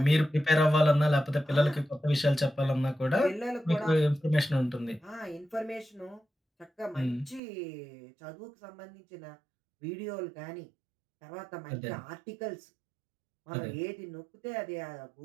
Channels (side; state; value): left; drops out; at 7.4 s